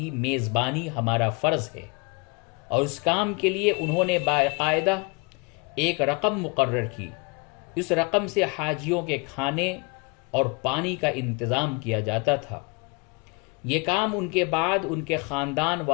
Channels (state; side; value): quieter; right; 30.2 dB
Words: میزبانی ہمارا فرض ہے، اور اس کام کے لیے انہوں نے باقاعدہ ایک رقم مقرر کی۔ اس رقم سے حاجیوں کے کھانے اور پانی کا انتظام کیا جاتا تھا۔ یہ کام ان کے بعد ان کے خاندان